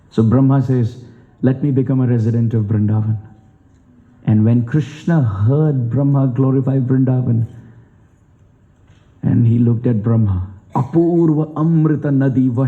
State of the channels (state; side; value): identical; both; correlation 1.00